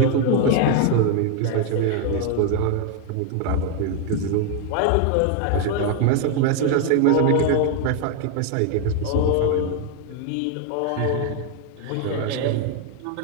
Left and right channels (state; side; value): different; both; correlation 0.01